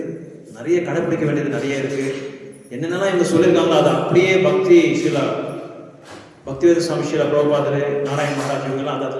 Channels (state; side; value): identical; both; correlation 1.00